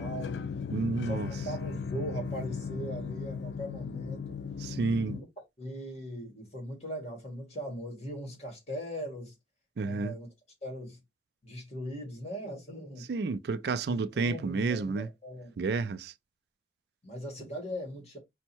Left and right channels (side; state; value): both; normal; correlation 0.54